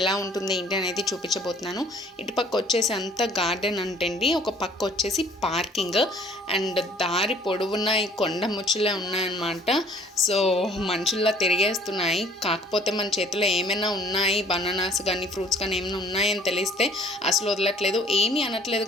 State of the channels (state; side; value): normal; both; correlation 0.55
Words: ఉంటుంది ఏంటి అనేది చూపించబోతున్నాను. ఇటుపక్క వచ్చేసి అంతా గార్డెన్ అంటండి, ఒక పక్క వచ్చేసి పార్కింగ్ అండ్ దారి పొడవున ఈ కొండ ముచ్చులే ఉన్నాయన్నమాట. సో మనుషుల్లా తిరిగేస్తున్నాయి. కాకపోతే మన చేతిలో ఏమైనా ఉన్నాయి, బనానాస్ కానీ ఫ్రూట్స్ కానీ ఏమైనా ఉన్నాయని తెలిస్తే అసలు వదలట్లేదు, ఏమీ అనట్లేదు,